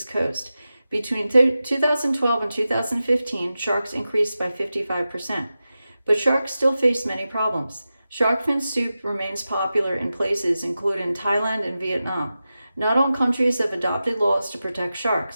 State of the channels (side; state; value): both; inverted; correlation -0.93